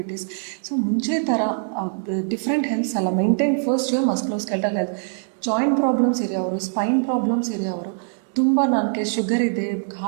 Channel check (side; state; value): left; silent; digital silence